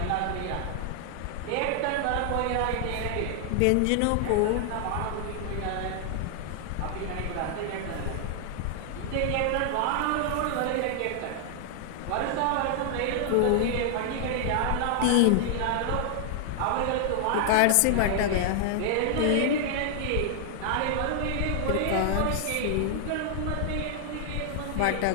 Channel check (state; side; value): different; both; correlation 0.00